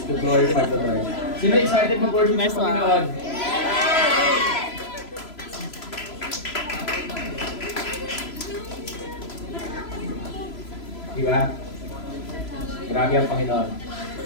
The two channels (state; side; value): late; right; 3.0 ms